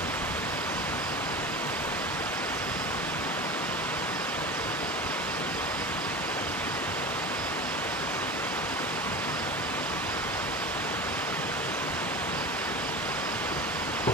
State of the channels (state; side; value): normal; both; correlation 0.31